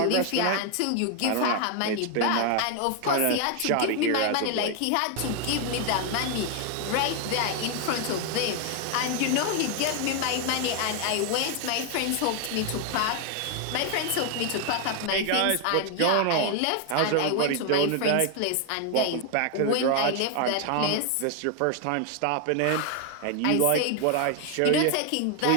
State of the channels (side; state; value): both; different; correlation 0.01